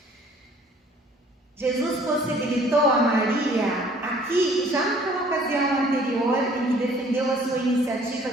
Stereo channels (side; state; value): both; normal; correlation 0.56